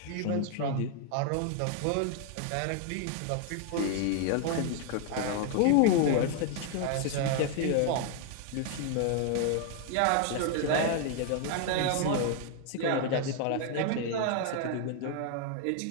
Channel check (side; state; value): both; different; correlation 0.00